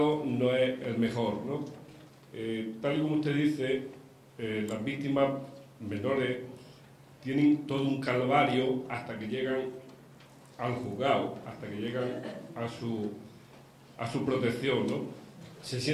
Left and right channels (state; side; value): identical; both; correlation 1.00